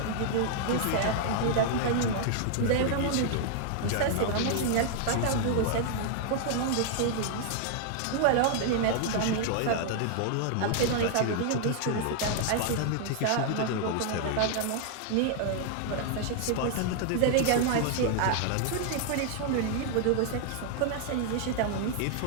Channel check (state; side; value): different; both; correlation 0.00